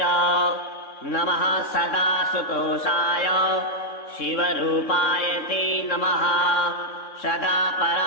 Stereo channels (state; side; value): late; right; 3.6 ms